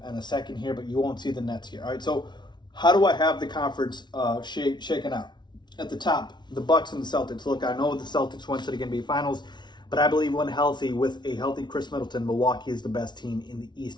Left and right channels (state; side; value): late; right; 0.21 ms